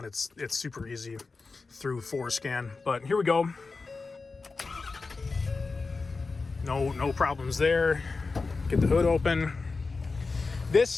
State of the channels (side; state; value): right; quieter; 4.1 dB